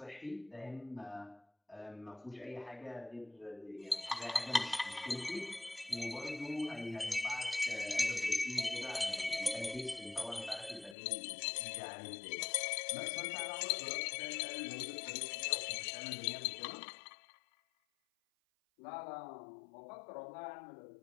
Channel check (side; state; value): right; drops out; at 11.0 s